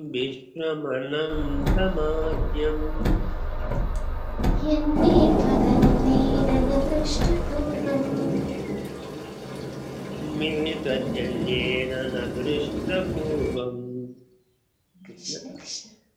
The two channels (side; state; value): both; identical; correlation 1.00